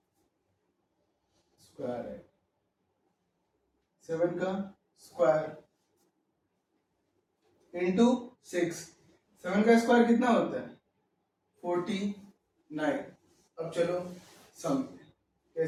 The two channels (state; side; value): identical; both; correlation 1.00